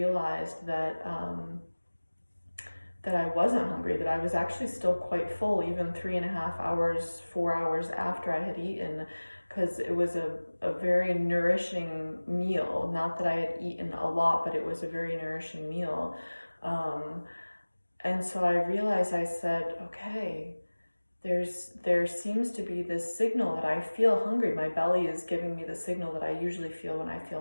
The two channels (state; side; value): inverted; both; correlation -1.00